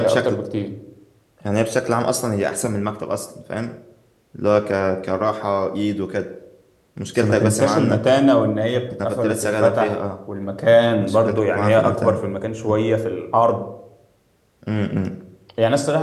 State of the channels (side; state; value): both; identical; correlation 1.00